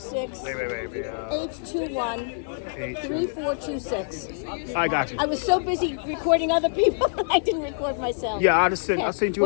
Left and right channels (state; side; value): silent; right; 61 dB below the other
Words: I got you. I was so busy recording other people, I didn't record myself. Yeah, I sent you.